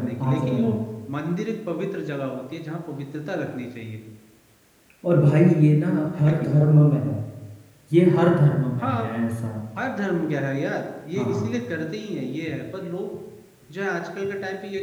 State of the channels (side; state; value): both; identical; correlation 1.00